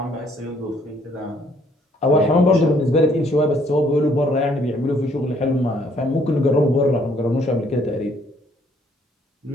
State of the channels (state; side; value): normal; both; correlation 0.65